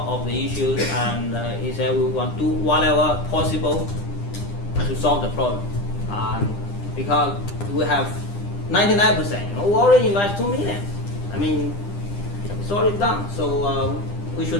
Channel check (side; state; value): right; late; 9.9 ms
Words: of the issues, and he said we want to do whatever possible to solve the problem. Because we have 99%, we already invest 2 million. I mean, it's already done. So we